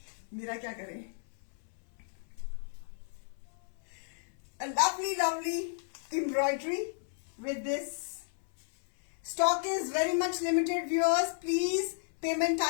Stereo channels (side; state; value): right; silent; 56 dB below the other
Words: मेरा क्या करें। A lovely lovely embroidery with this. Stock is very much limited viewers, please payment